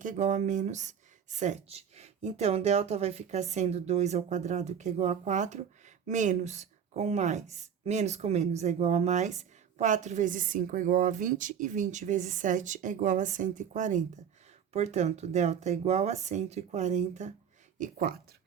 é igual a menos 7. Então, delta vai ficar sendo 2 ao quadrado, que é igual a 4, menos com mais, menos com menos é igual a mais, 4 vezes 5 é igual a 20, e 20 vezes 7 é igual a 140. Portanto, delta é igual a 144.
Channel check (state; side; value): quieter; left; 8.0 dB